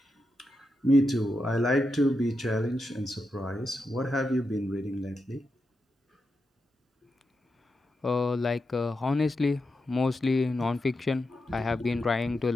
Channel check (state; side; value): normal; both; correlation 0.87